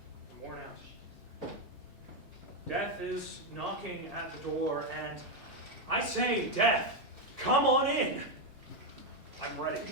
I'm worn out. Death is knocking at the door, and I say, Death, come on in. I'm ready.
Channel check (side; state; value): both; normal; correlation 0.05